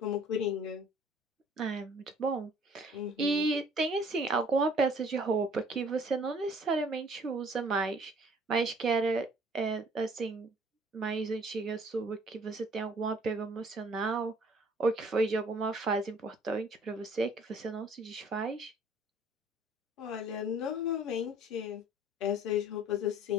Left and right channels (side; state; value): both; normal; correlation 0.55